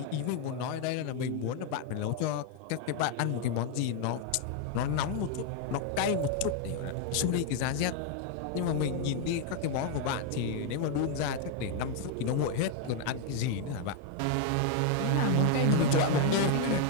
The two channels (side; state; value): both; different; correlation 0.00